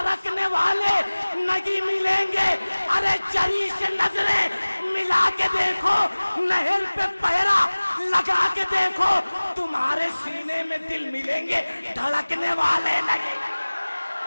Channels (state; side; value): inverted; both; correlation -1.00